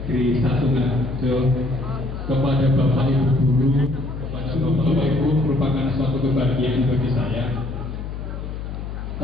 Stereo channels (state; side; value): noise; left; hum, 7 dB below the sound